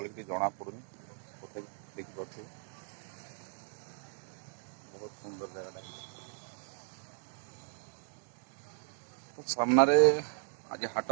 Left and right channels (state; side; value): silent; left; 54 dB below the other